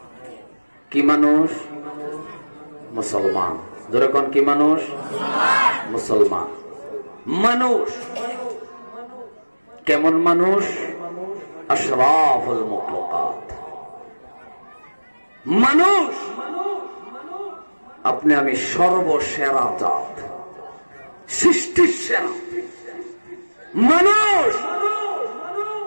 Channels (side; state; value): both; inverted; correlation -1.00